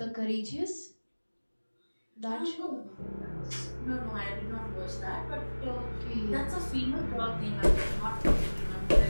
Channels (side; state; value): both; inverted; correlation -1.00